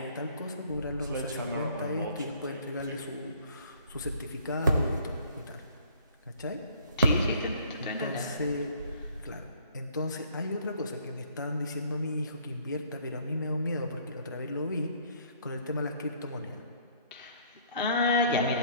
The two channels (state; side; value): inverted; both; correlation -0.59